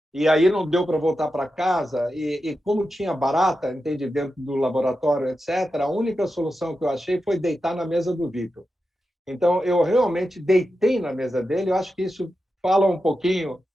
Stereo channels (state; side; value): normal; both; correlation 0.90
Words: e aí não deu para voltar para casa, e como tinha barata, entende, dentro do laboratório, etc., a única solução que eu achei foi deitar na mesa do Vitor. Então, eu realmente deitei na mesa dele. Eu acho que isso fala um pouquinho,